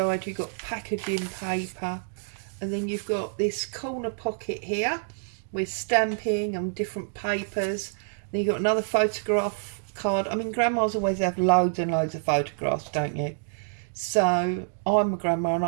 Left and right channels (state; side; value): silent; left; digital silence